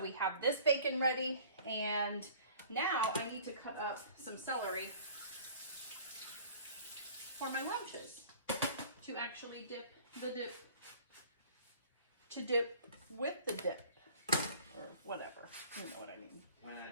have this bacon ready. And now I need to cut up some celery for my lunches to actually dip the dip, to dip with the dip, or whatever. You know what I mean. When I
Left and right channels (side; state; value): both; inverted; correlation -0.47